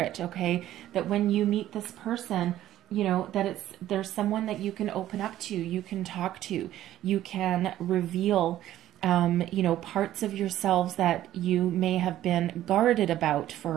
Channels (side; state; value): left; quieter; 13.2 dB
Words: okay, that when you meet this person, you know, that there's someone that you can open up to, you can talk to, you can reveal, you know, parts of yourselves that you may have been guarded about